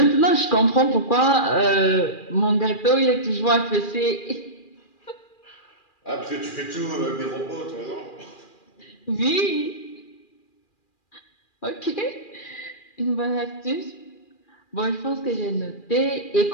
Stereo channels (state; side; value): late; right; 2.4 ms